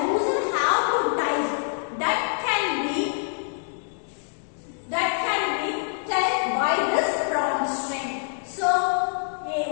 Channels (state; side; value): silent; right; digital silence